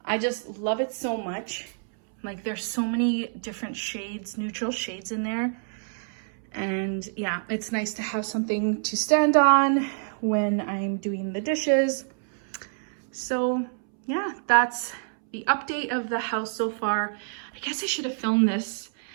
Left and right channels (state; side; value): silent; left; 60 dB below the other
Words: I just love it so much. Like, there's so many different shades, neutral shades in there. And yeah, it's nice to have something to stand on when I'm doing the dishes. So yeah, that's the update of the house so far. I guess I should have filmed this